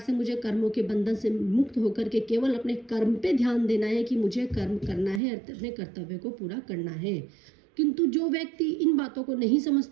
मुझे कर्मों के बंधन से मुक्त होकर के केवल अपने कर्म पे ध्यान देना है कि मुझे कर्म करना है, अपने कर्तव्य को पूरा करना है। किंतु जो व्यक्ति इन बातों को नहीं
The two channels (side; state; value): left; drops out; at 5.2 s